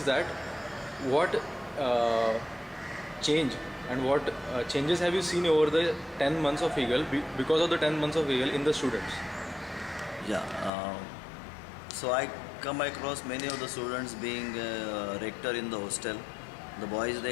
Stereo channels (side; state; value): right; drops out; at 10.7 s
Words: that what change and what changes have you seen over the 10 months of Eagle, because of the 10 months of Eagle, in the students? Yeah, so I come across many of the students being rector in the hostel. The boys,